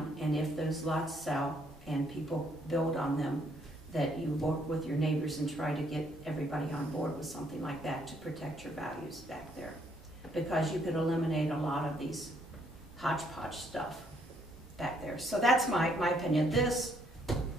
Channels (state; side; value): normal; both; correlation 0.69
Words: and if those lots sell and people build on them, that you work with your neighbors and try to get everybody on board with something like that to protect your values back there. Because you could eliminate a lot of these hodgepodge stuff back there. So that's my opinion. This,